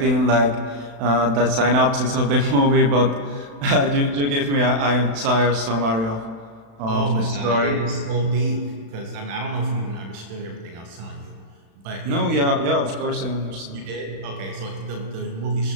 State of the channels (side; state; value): left; late; 36 ms